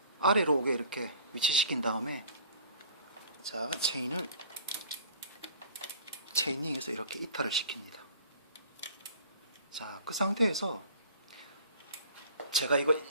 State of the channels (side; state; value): both; inverted; correlation -0.48